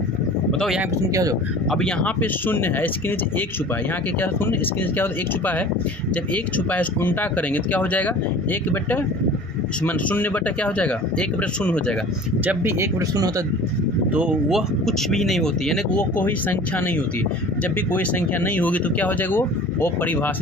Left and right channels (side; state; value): both; normal; correlation 0.42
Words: बताओ यहाँ पे शून्य क्या हो जाएगा? अब यहाँ पे शून्य है, इसके नीचे एक छुपा है, यहाँ के क्या शून्य, इसके नीचे क्या होता है? एक छुपा है। जब एक छुपा है इसको उल्टा करेंगे तो क्या हो जाएगा? 1/0 क्या हो जाएगा? 1/0 हो जाएगा। जब भी 1/0 होता है तो वह कुछ भी नहीं होती, यानी कि वो कोई संख्या नहीं होती। जब भी कोई संख्या नहीं होगी तो क्या हो जाएगा? वो